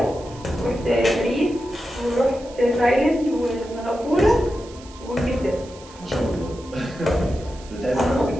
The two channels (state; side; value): noise; right; hiss, 21 dB below the sound